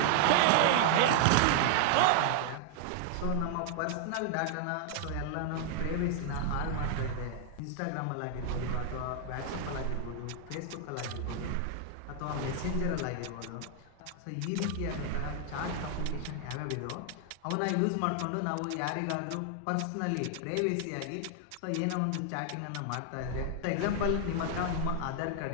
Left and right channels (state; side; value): different; both; correlation 0.00